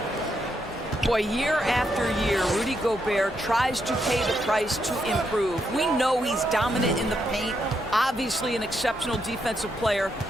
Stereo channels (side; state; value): both; normal; correlation 0.79